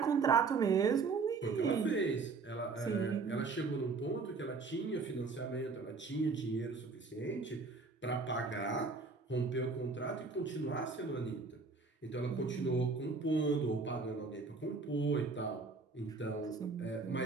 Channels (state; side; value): quieter; left; 4.4 dB